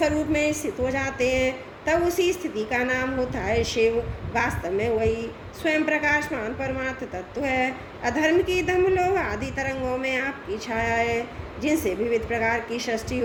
में स्थित हो जाते हैं, तब उसी स्थिति का नाम होता है शिव। वास्तव में वही स्वयं प्रकाशमान परमार्थ तत्व है। अधर्म की दम लोभ आदि तरंगों में आपकी छाया है, जिनसे विविध प्रकार की सृष्टि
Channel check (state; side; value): identical; both; correlation 1.00